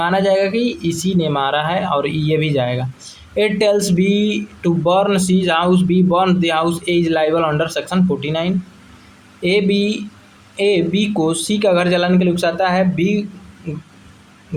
जाएगा कि इसी ने मारा है और ये भी जाएगा। It tells B to burn C's house, B burn the house, A is liable under section 49। A B को सी का घर जलाने के लिए उकसाता है, बी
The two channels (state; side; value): identical; both; correlation 1.00